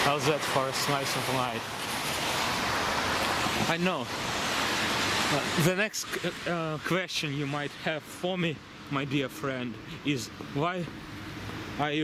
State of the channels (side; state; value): both; identical; correlation 1.00